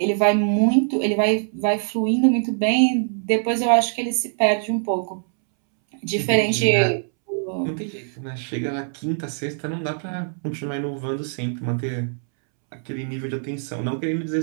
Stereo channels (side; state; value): left; silent; 64 dB below the other